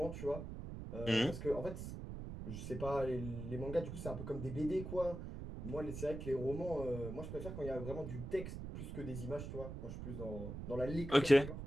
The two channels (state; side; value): noise; right; rumble, 7 dB below the sound